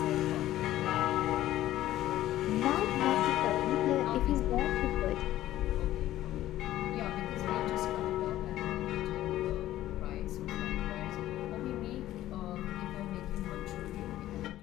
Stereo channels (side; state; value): right; quieter; 14.1 dB